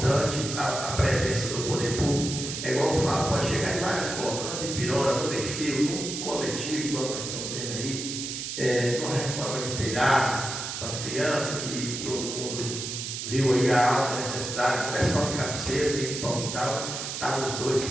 a presença do poder público. É igual eu falo, pode chegar de várias formas, não de pirona, no perfil, no coletivo, igual nós estamos vendo aí, numa reforma de telhado, para as crianças, que todo mundo viu aí a alta necessidade, não é só de cabeceira, tem que pão e tal, estavam os dois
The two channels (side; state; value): right; noise; hiss, 5 dB below the sound